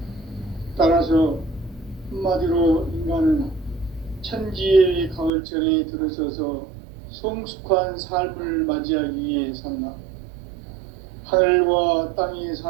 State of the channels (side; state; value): left; drops out; at 5.3 s